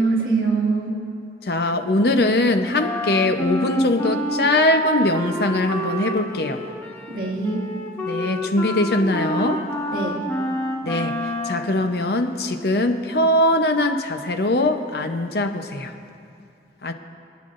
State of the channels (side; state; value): both; normal; correlation 0.34